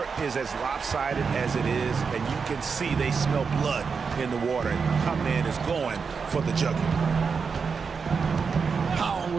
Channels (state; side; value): quieter; left; 5.5 dB